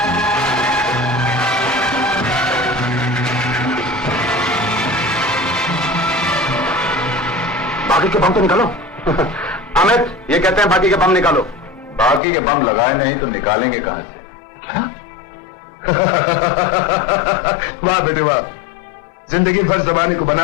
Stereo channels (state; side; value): drops out; right; at 12.2 s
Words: बाकी के बम तो निकालो। अमित, ये कहते हैं बाकी के बम निकालो। बाकी के बम लगाए नहीं तो निकालेंगे कहां से? क्या? वाह बेटे वाह, जिंदगी भर जमाने को